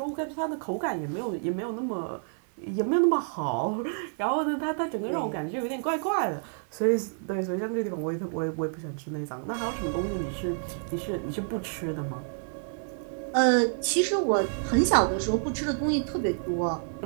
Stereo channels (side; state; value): left; silent; 59 dB below the other